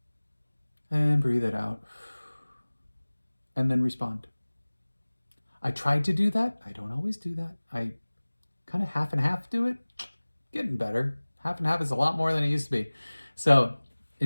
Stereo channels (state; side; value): inverted; both; correlation -1.00